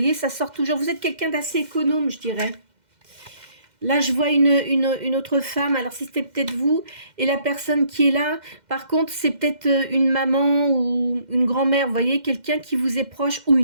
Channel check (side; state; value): left; late; 2.1 ms